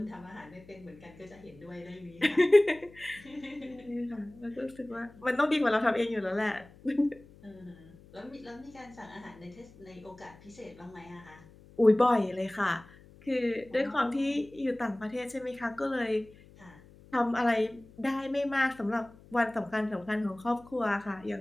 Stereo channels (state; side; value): noise; left; hum, 23 dB below the sound